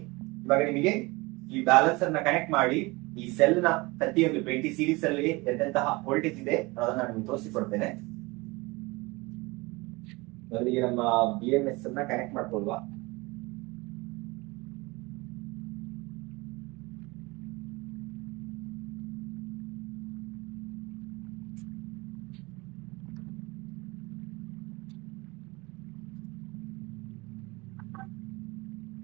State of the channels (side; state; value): left; quieter; 24.2 dB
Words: ಇವಾಗ ನಿಮಗೆ ಈ ಬ್ಯಾಲೆನ್ಸರ್ ನ ಕನೆಕ್ಟ್ ಮಾಡಿ ಈ ಸೆಲ್ ನ ಪ್ರತಿಯೊಂದು 20 ಸೀರೀಸ್ ಅಲ್ಲಿ ಎಂತೆಂತಹ ವೋಲ್ಟೇಜ್ ಇದೆ ಅದನ್ನ ನಾನು ನಿಮ್ಗೆ ತೋರಿಸಿಕೊಡ್ತೇನೆ. ಮೊದಲಿಗೆ ನಮ್ಮ BMS ಅನ್ನ ಕನೆಕ್ಟ್ ಮಾಡ್ಕೊಳ್ಳುವ.